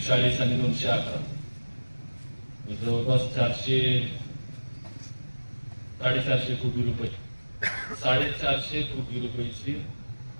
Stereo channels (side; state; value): both; inverted; correlation -1.00